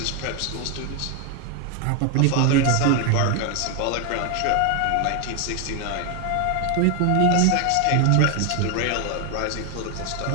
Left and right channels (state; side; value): different; both; correlation 0.01